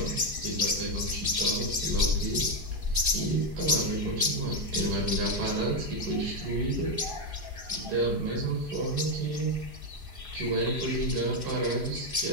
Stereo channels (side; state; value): left; late; 4.8 ms